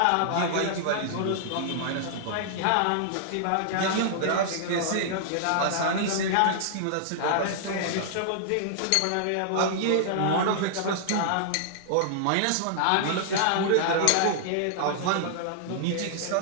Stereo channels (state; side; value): different; both; correlation -0.01